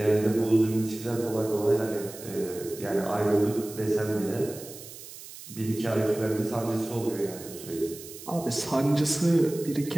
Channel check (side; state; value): right; noise; hiss, 15 dB below the sound